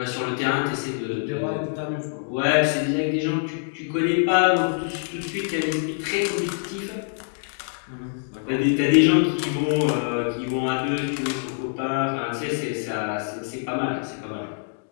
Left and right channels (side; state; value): right; silent; digital silence